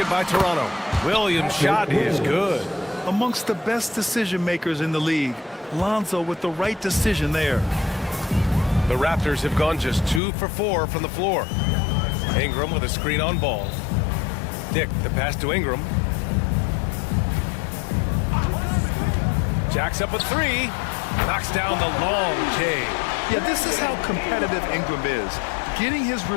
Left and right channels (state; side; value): drops out; right; at 10.2 s